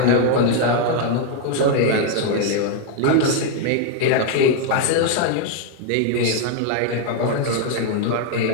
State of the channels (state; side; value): different; both; correlation 0.01